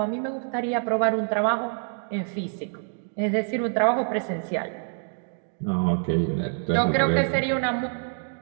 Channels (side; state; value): left; silent; 61 dB below the other